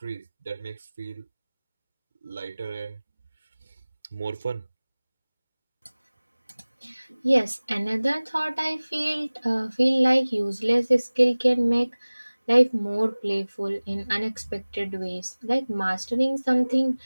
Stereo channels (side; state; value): both; inverted; correlation -1.00